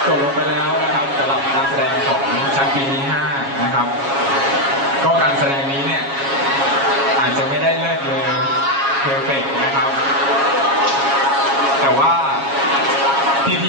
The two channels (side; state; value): left; late; 7.3 ms